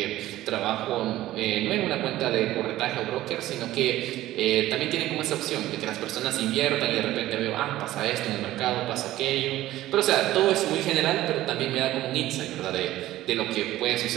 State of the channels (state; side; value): quieter; left; 15.1 dB